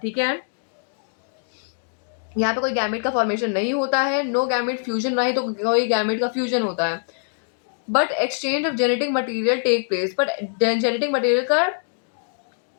ठीक है. यहाँ पे कोई गैमेट का फॉर्मेशन नहीं होता है. नो गैमेट फ्यूजन, नहीं तो कोई गैमेट का फ्यूजन होता है. But exchange of genetic material take place. But genetic material का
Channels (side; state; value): right; silent; digital silence